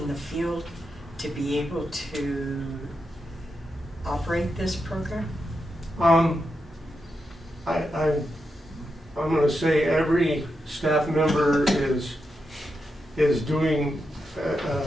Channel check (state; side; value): normal; both; correlation 0.86